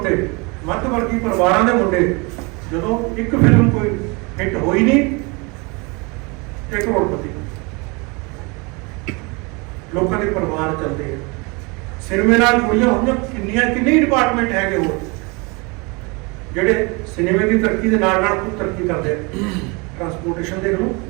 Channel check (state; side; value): quieter; left; 28.7 dB